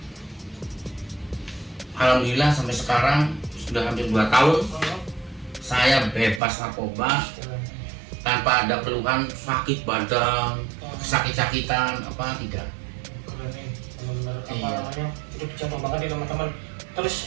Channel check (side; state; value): left; drops out; at 6.4 s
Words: Alhamdulillah sampai sekarang sudah hampir 2 tahun saya bebas narkoba tanpa tanpa ada keluhan sakit badan, sakit-sakitan apa tidak. Keren nih, benar-benar apa Iya. namanya itu dicontoh banget nih teman-teman. Terus